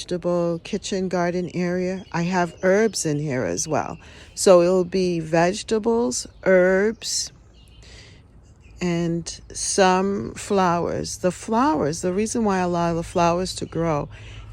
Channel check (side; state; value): both; identical; correlation 1.00